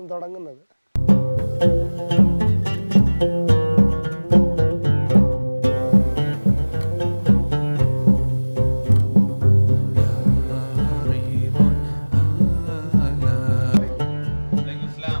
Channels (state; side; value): inverted; both; correlation -1.00